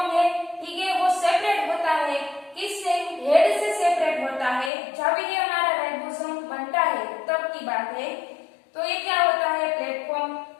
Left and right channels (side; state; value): right; drops out; at 4.7 s